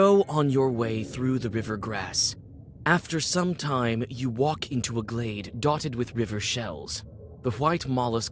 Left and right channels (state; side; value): identical; both; correlation 1.00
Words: on your way through the river grass. After some time, you walk into a glade dotted with river shells. The white